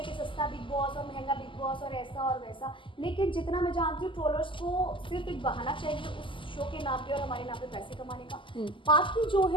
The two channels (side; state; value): right; late; 0.25 ms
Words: हैं कि सस्ता बिग बॉस और महंगा बिग बॉस और ऐसा और वैसा, लेकिन जितना मैं जानती हूँ ट्रोलर्स को सिर्फ एक बहाना चाहिए उस शो के नाम पे और हमारे नाम पे पैसे कमाने का। बाकी जो